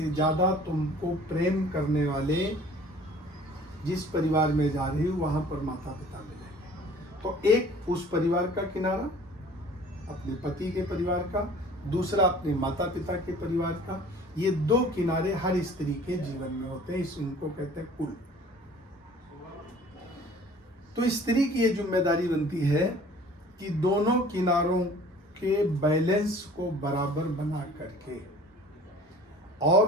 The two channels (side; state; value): both; normal; correlation 0.49